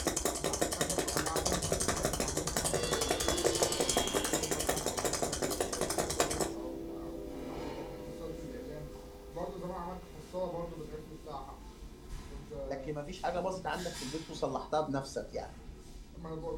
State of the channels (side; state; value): both; identical; correlation 1.00